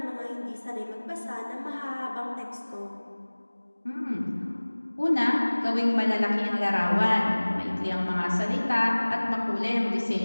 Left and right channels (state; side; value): inverted; both; correlation -1.00